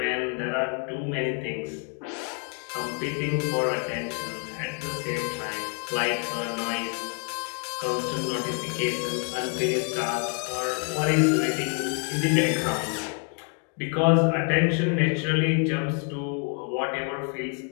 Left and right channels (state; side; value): quieter; right; 37.9 dB